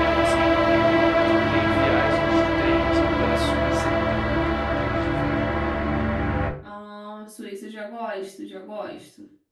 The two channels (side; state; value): both; identical; correlation 1.00